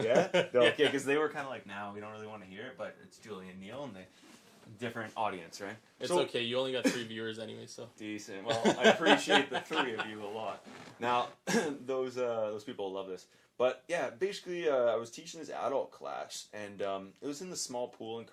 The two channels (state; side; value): identical; both; correlation 1.00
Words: Yeah? Okay, because they were kind of like, we don't really want to hear it, but it's Julie and Neil, and they... different audience, right? It's okay. You only got 3 viewers anyway, so decent. Well, I appreciate the 3 of you a lot. Now, those people love this, but yeah, basically, I was teaching this adult class, and it was in the small pool in